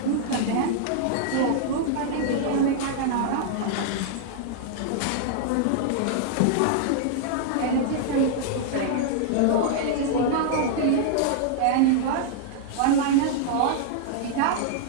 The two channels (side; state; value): both; different; correlation -0.01